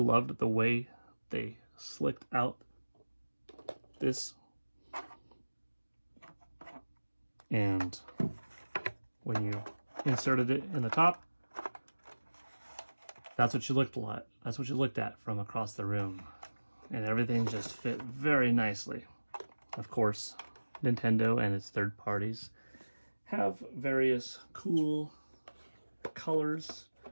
the way they slicked out this. And when you inserted it in the top, that's what you looked at. That's what you looked at from across the room. And everything just fit very nicely. Of course, Nintendo and its third parties have various cool colors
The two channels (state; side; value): inverted; both; correlation -1.00